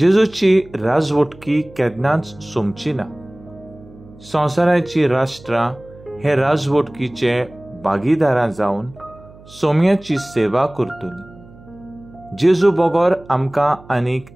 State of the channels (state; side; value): noise; right; hum, 22 dB below the sound